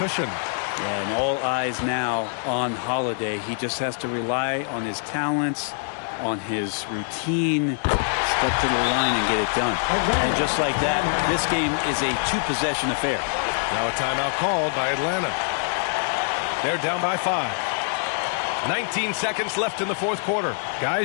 Yeah, and all eyes now on Holiday. He just has to rely on his talents, on his routine, step to the line and get it done. And just like that, this game is a 2-possession affair. Now a timeout called by Atlanta. They're down by 5. 19 seconds left in the fourth quarter.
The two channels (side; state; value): right; silent; 62 dB below the other